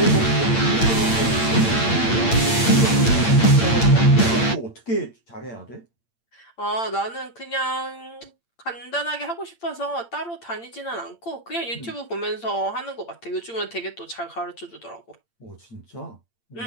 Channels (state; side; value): late; right; 8.7 ms